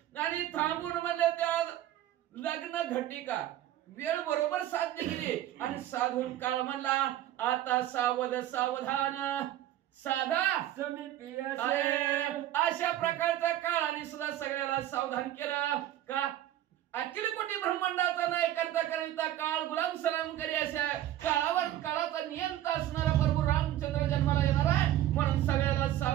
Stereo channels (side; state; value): left; quieter; 12.9 dB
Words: आणि थांबून म्हणले त्या लग्न घटिका वेळ बरोबर साध्य केली आणि साधून काळ म्हणला आता सावध सावधान साधा समिती अशा प्रकारचा काळाने सुद्धा सगळ्याला सावधान केलं. का अखिल कोटी ब्रह्मांडाचा नाही करता करिता काळ गुलाम सलाम करी अशा काळावर काळाचा नियंता असणारा प्रभू रामचंद्र जन्माला येणार आहे म्हणून सगळ्याला